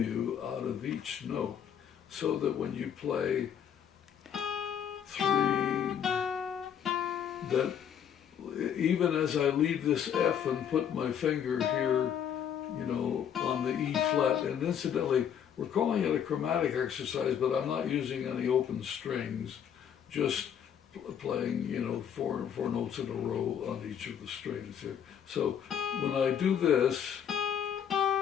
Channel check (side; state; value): right; quieter; 8.6 dB